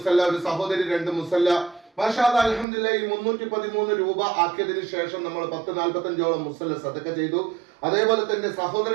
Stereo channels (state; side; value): drops out; left; at 2.7 s